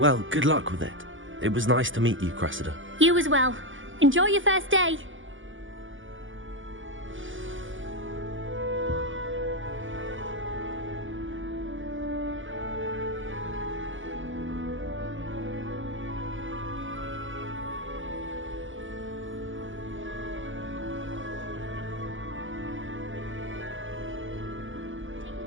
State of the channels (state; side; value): late; left; 0.57 ms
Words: good luck with it. It was nice to meet you, Cressida. You as well. Enjoy your first day.